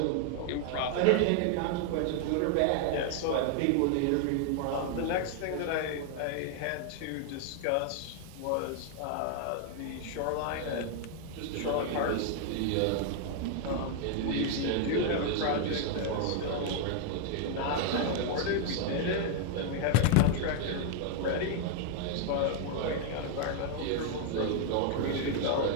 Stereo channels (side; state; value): both; different; correlation 0.00